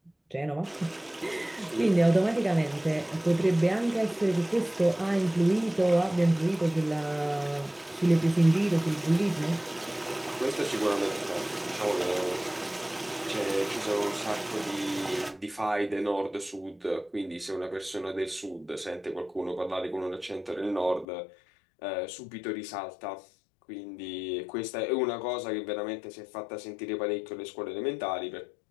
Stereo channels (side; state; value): right; drops out; at 21.1 s